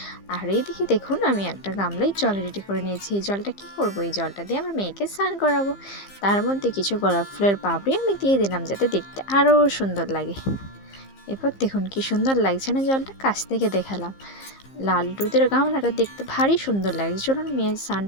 আর এইদিকে দেখুন, আমি একটা গামলায় জল রেডি করে নিয়েছি। এই জলটা কি করব? এই জলটা দিয়ে আমার মেয়েকে স্নান করাবো। তার মধ্যে কিছু গোলাপ ফুলের পাপড়ি আমি দিয়ে দিলাম, যাতে দেখতে আরও সুন্দর লাগে। এরপর দেখুন কি সুন্দর লাগছে না জলটা? কাছ থেকে দেখালাম। লাল দুধের গামলাটা দেখতে ভারী সুন্দর লাগছে। চলুন মেয়ের স্নান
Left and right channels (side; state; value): right; late; 15 ms